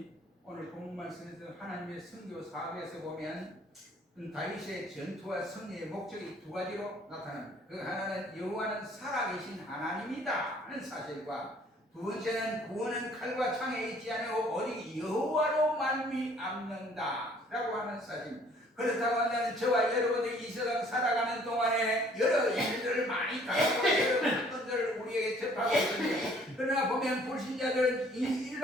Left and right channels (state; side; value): normal; both; correlation 0.58